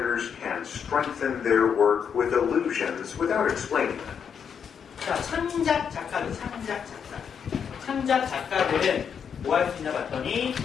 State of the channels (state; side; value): quieter; right; 7.3 dB